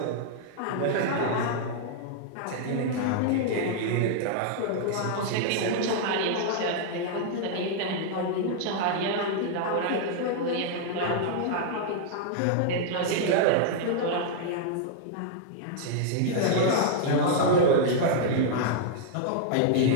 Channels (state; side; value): different; both; correlation -0.01